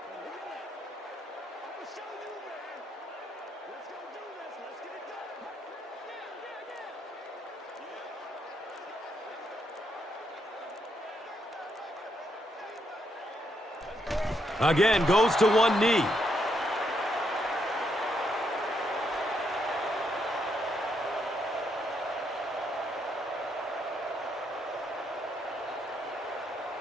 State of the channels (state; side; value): normal; both; correlation 0.77